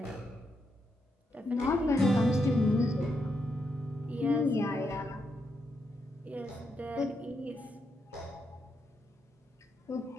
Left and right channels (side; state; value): both; normal; correlation 0.81